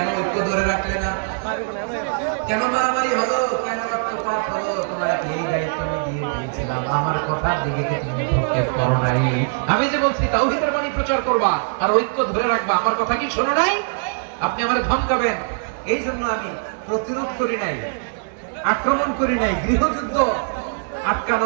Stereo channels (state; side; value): silent; left; 60 dB below the other